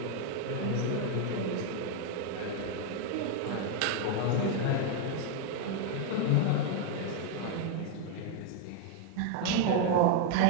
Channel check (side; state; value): both; different; correlation 0.00